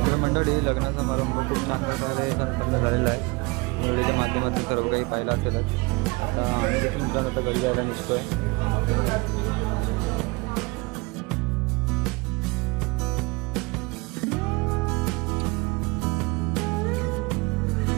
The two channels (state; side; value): quieter; left; 26.0 dB